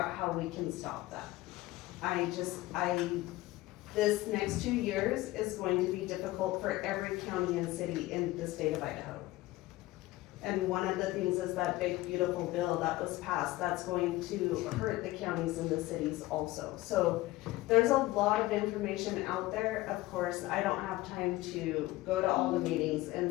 how we can stop that. This next 2 years is going to be difficult for every county and city in the state of Idaho. And one of the things is that big beautiful bill that was passed, that's going to hurt the counties and the cities also. So there's a lot of information out there. Of course, I don't have time to go to all the meetings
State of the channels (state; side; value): quieter; right; 18.2 dB